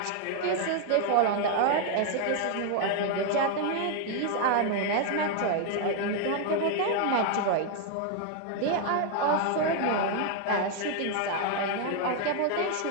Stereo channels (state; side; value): different; both; correlation 0.00